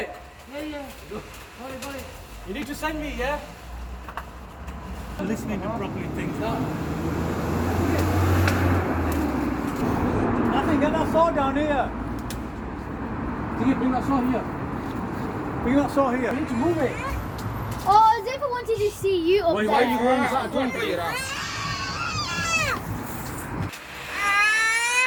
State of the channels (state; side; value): identical; both; correlation 1.00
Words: Yeah. Got it. You need to send me, yeah? Listening to properly things. Nothing, get that saw down here. Bring that saw here. Bring that saw here. You need to move it. Oh, Zipper wanted to see you up Why there. are you going that?